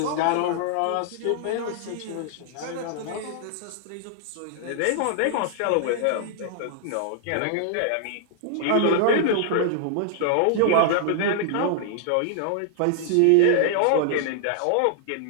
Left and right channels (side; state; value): both; different; correlation -0.01